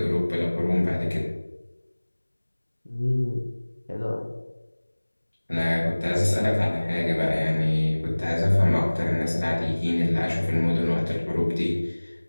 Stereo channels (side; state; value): both; inverted; correlation -1.00